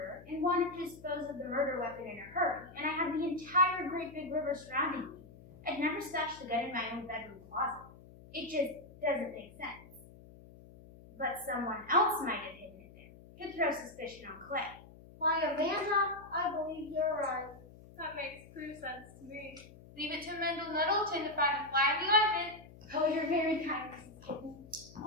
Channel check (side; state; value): left; noise; hum, 20 dB below the sound